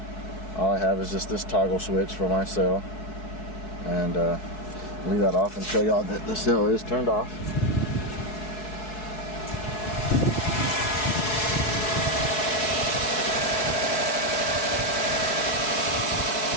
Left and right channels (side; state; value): right; late; 4.6 ms